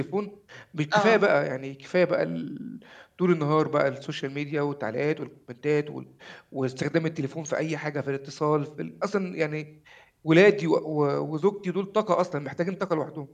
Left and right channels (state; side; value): identical; both; correlation 1.00